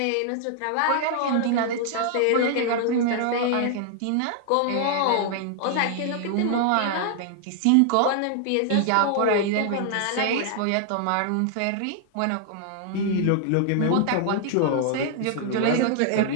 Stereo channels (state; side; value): different; both; correlation -0.01